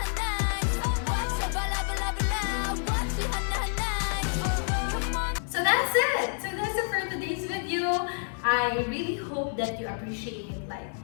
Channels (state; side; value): silent; right; digital silence